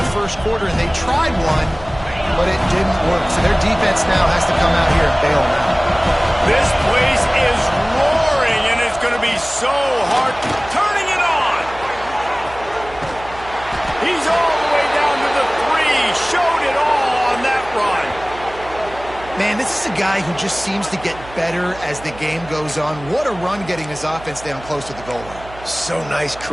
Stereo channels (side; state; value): right; noise; hum, 17 dB below the sound